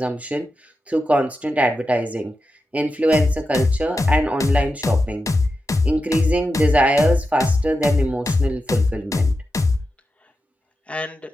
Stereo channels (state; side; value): normal; both; correlation 0.90